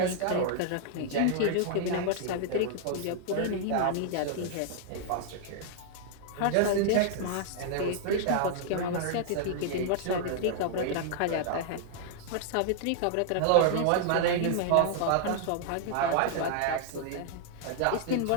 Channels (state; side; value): different; both; correlation -0.01